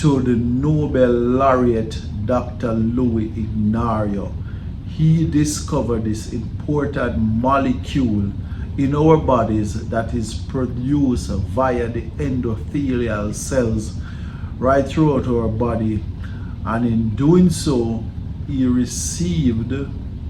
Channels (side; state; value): both; identical; correlation 1.00